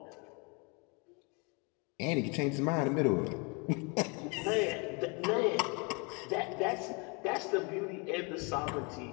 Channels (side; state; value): right; quieter; 31.6 dB